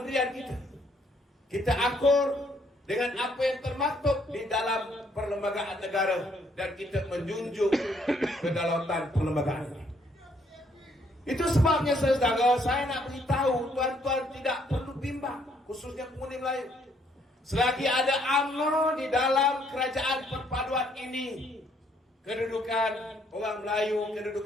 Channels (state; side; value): normal; both; correlation 0.68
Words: kita. Kita akur dengan apa yang termaktub di dalam perlembagaan negara dan kita menjunjung kedaulatan perlembagaan ini. Itu sebabnya saudara, saya nak beritahu tuan-tuan tidak perlu bimbang, khususnya pengundi Melayu. Selagi ada UMNO di dalam kerajaan perpaduan ini, kedudukan orang Melayu,